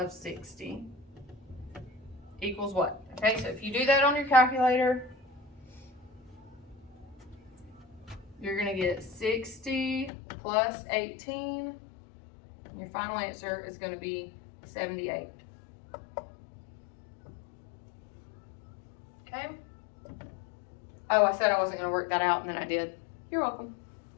60 equals what? Okay, so if you do that on your calculator, you're going to get 60 plus 18. And your final answer is going to be 78. Okay. Oh, I said I wasn't going to work that out, and then I did. You're welcome.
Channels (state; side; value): drops out; right; at 10.1 s